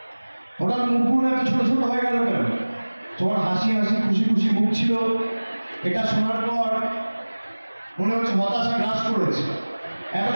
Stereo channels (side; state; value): both; inverted; correlation -1.00